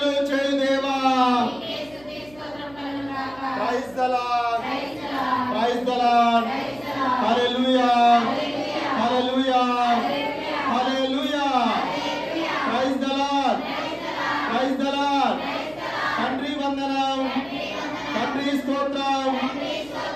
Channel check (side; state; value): right; noise; hum, 24 dB below the sound